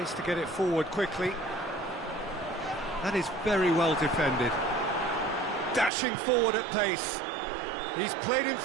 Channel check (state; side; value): drops out; left; at 5.9 s